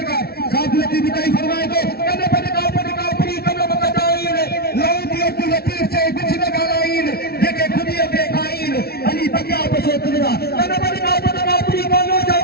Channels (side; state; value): right; late; 0.45 ms